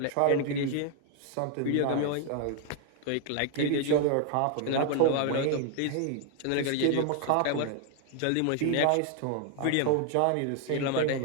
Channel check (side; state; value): both; different; correlation 0.00